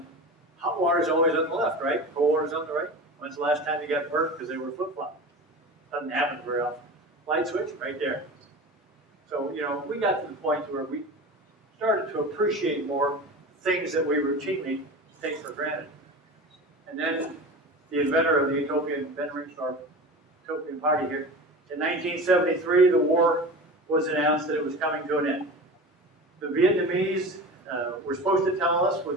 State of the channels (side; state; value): both; normal; correlation 0.32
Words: hot water is always on the left, right? Cold water is on the right. When's the last time you got burnt because they were flip-flopped? Doesn't happen very often. Light switch, right there. So, you know, we got to the point where we started to appreciate more things that we routinely take for granted. And then the inventor of the utopian, Ben Ringsdorf, utopian party here, in 1973, the war was announced that it was coming to an end. The Vietnamese were supposed to tell us